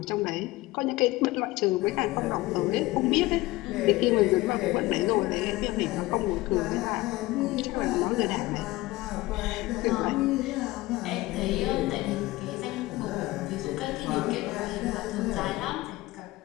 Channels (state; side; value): quieter; right; 19.4 dB